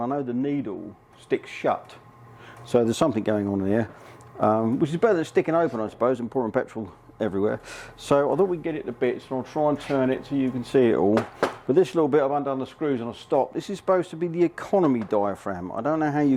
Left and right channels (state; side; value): identical; both; correlation 1.00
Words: I know the needle sticks shut. So there's something going on here, which is better than sticking open, I suppose, and pouring petrol everywhere. So I thought we'd get it to bits, and I'll try and turn it so you can see it all. But this little bit I've undone the screws and I'll stop. This is supposed to be the economy diaphragm. I don't know how